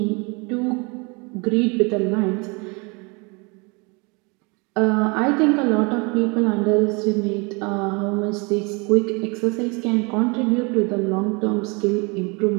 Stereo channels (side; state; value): left; quieter; 30.0 dB